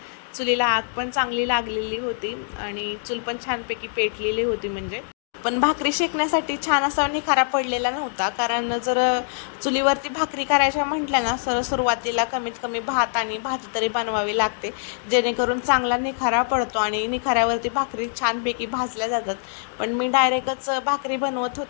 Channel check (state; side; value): silent; right; digital silence